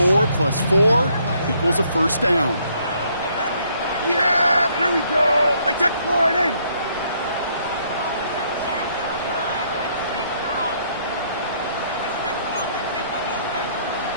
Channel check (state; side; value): inverted; both; correlation -0.68